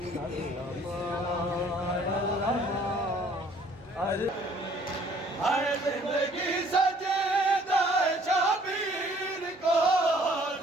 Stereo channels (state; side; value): normal; both; correlation 0.58